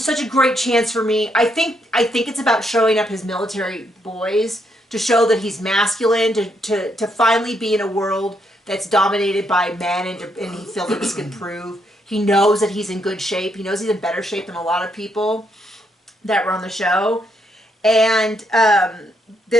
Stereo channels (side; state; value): both; normal; correlation 0.76